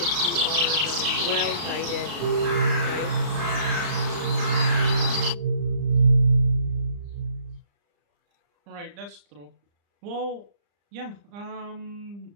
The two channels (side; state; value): left; late; 35 ms